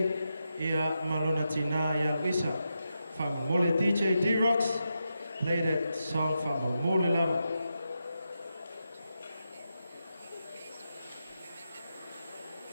ia malona tina ia wisa whamamole DJ D-Rocks play that song whamamole lava.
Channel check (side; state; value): both; inverted; correlation -0.87